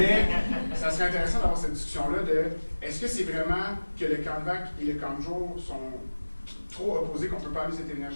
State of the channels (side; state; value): both; inverted; correlation -1.00